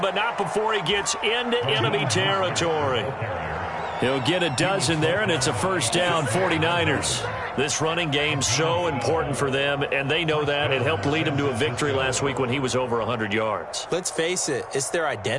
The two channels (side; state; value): both; identical; correlation 1.00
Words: not before he gets into enemy territory. He'll get a dozen there, and it's a first down, 49ers. This running game's so important for them, and they know that. It helped lead them to a victory last week when he was over 100 yards. Let's face it, it's their